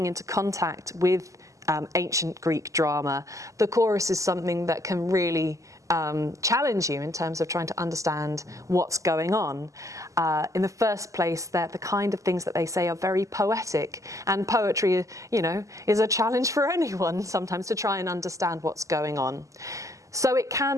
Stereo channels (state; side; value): late; left; 0.16 ms